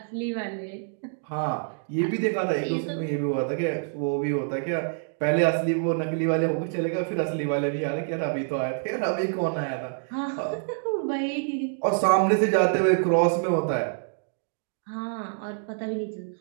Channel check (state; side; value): silent; left; digital silence